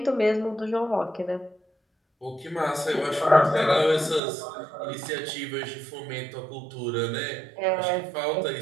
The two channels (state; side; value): drops out; left; at 4.2 s